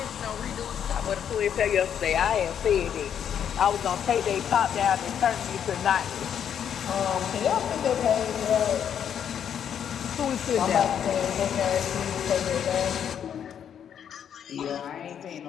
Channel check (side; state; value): right; quieter; 8.7 dB